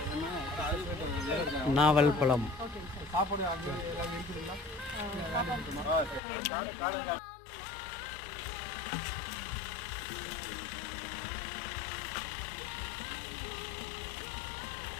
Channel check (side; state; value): right; drops out; at 6.2 s